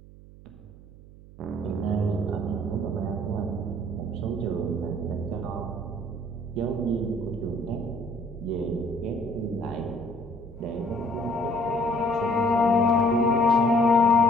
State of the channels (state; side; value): noise; right; hum, 20 dB below the sound